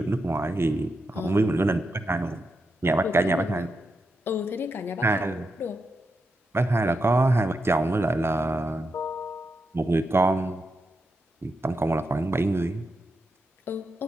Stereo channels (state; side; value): normal; both; correlation 0.86